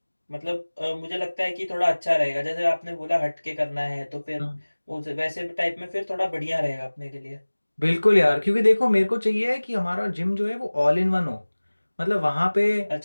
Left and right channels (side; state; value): both; inverted; correlation -1.00